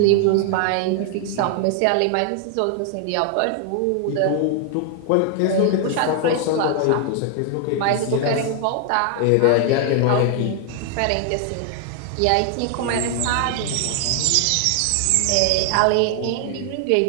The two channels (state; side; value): different; both; correlation 0.00